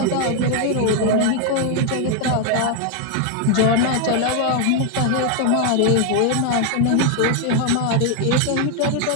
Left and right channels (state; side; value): different; both; correlation 0.01